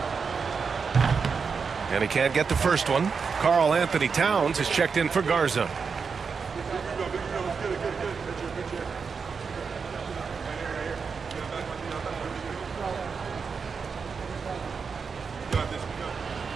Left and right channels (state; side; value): quieter; left; 5.5 dB